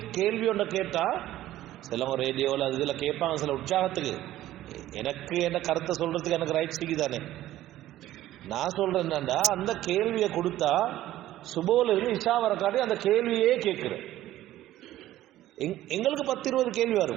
கேள்வி ஒன்றை கேட்டா சிலவங்க ரேடியோவில் அது இதில் கேட்பாங்க சில உற்சாகத்துக்கு. எனக்கு என்ன கருத்தை சொல்றதுக்கு எனக்கு ரைட் சிக்கிதானே. நான் சொல்றேன் என்னண்டா, அந்த கேள்வியை கொடுத்தா சுபோல இருந்து இஷா வர காட்டி அந்த கேள்வியே கேட்கிறேன். எங்களுக்கு 10-20 கேள்வி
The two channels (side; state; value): left; quieter; 14.2 dB